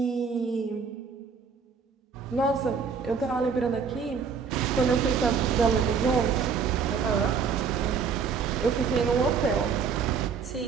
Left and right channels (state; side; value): quieter; left; 5.9 dB